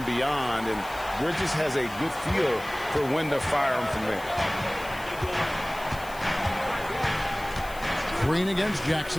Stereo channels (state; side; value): noise; left; hiss, 18 dB below the sound